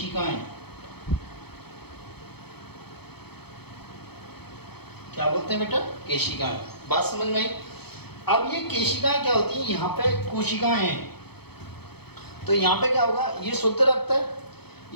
क्या बोलते हैं बेटा? केशिकाएं। बात समझ में आई? अब ये केशिकाएं क्या होती हैं? यहाँ पे कोशिकाएं हैं, तो यहाँ पे क्या होगा? ये शुद्ध रक्त है।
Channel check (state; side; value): late; right; 0.97 ms